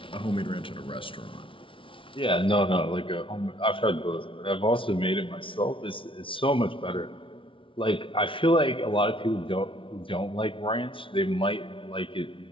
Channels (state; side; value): late; right; 0.25 ms